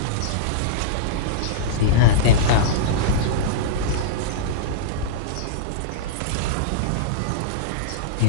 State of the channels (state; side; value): different; both; correlation -0.04